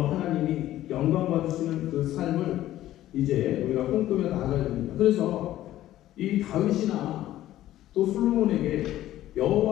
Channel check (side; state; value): right; quieter; 13.9 dB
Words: 하나님이 영광 받으시는 그 삶을 이제 우리가 꿈꾸며 나아가야 됩니다. 그래서 이 다윗이나 또 솔로몬에게